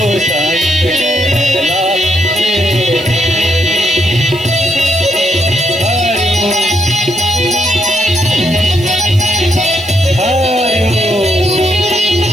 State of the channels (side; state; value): right; noise; hiss, 21 dB below the sound